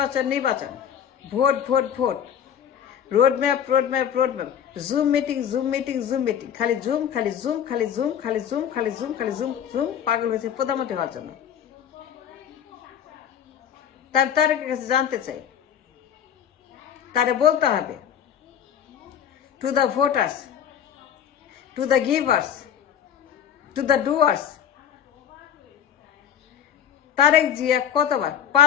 নির্বাচন, vote vote vote, roadmap roadmap roadmap, zoom meeting zoom meeting zoom meeting, খালি জুম খালি জুম খালি জুম খালি জুম খালি জুম খালি জুম জুম, পাগল হয়েছে প্রধানমন্ত্রী হওয়ার জন্য। তার তারেকের কাছে জানতে চাই, তারে বলতে হবে to the voters, to the givers, to the doers, Tarique Zia কতবার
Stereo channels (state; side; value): quieter; right; 9.0 dB